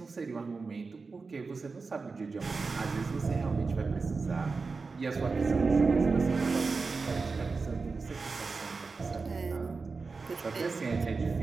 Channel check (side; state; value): left; quieter; 4.3 dB